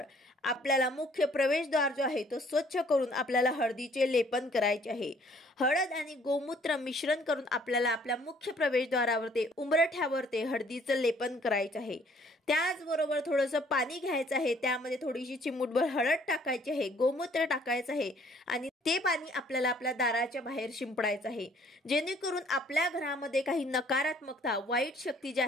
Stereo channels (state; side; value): normal; both; correlation 0.60